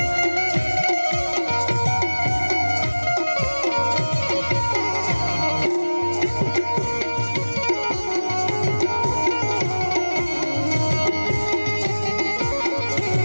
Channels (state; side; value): inverted; both; correlation -1.00